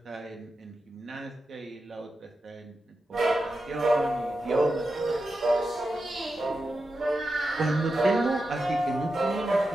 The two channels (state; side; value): normal; both; correlation 0.90